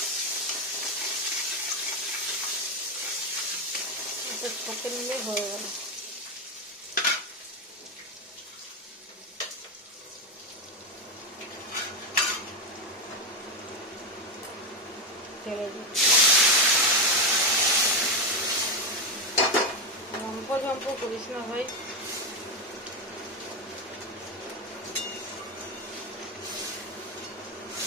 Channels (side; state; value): both; normal; correlation 0.10